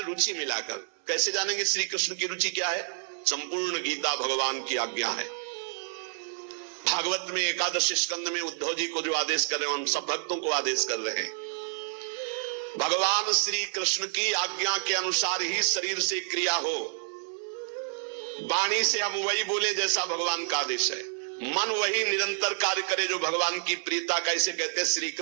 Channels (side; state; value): left; silent; 59 dB below the other